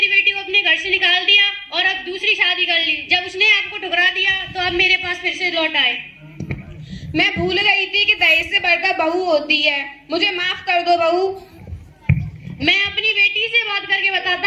बेटी को अपने घर से निकाल दिया और अब दूसरी शादी कर ली। जब उसने आपको ठुकरा दिया तो अब मेरे पास फिर से लौट आए। मैं भूल गई थी कि दहेज से बढ़कर बहू होती है, मुझे माफ कर दो बहू। मैं अपनी बेटी से बात करके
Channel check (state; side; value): identical; both; correlation 1.00